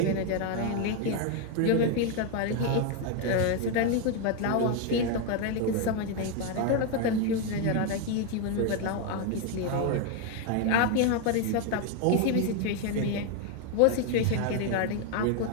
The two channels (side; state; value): both; different; correlation 0.01